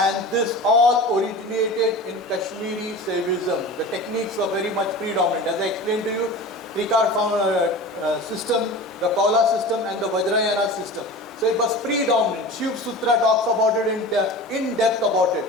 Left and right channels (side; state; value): both; normal; correlation 0.34